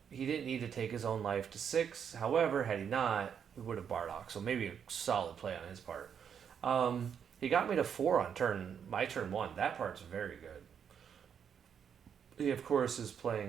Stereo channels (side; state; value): left; quieter; 7.8 dB